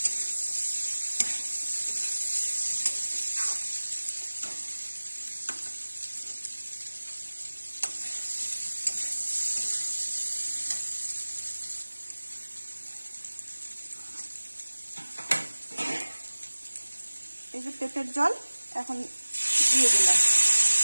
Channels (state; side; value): inverted; both; correlation -1.00